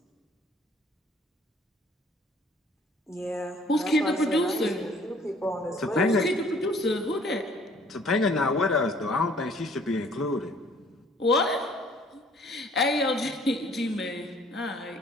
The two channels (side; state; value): both; normal; correlation 0.57